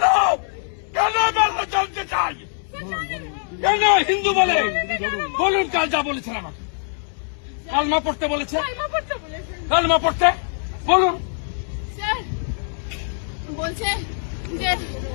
কেন মারলো? জানতে চাই। কেন হিন্দু বলে? বলুন, কাল যা বলেছেন আমাকে। কালমা পড়তে বলেছে, কালমা পড়তে বলেছেন। কালমা পড়তে বলুন। স্যার বলছে যে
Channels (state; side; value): silent; right; digital silence